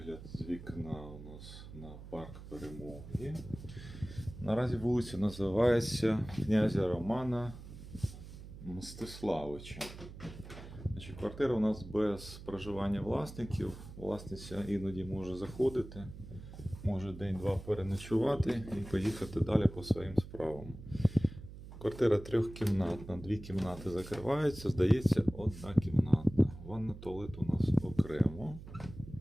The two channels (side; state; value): right; noise; hum, 14 dB below the sound